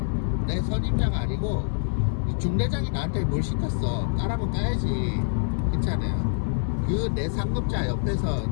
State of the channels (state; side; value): silent; right; 61 dB below the other